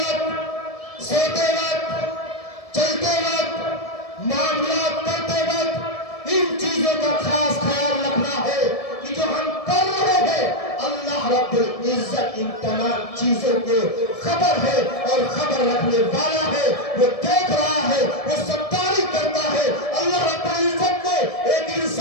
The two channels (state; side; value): late; right; 1.7 ms